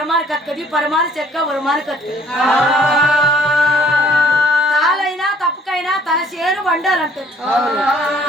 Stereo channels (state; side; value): normal; both; correlation 0.59